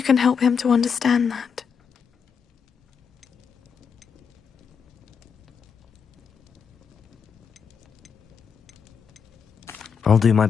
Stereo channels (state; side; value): quieter; right; 6.5 dB